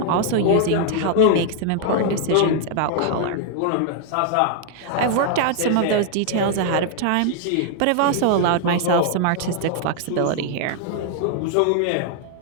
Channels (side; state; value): both; different; correlation 0.00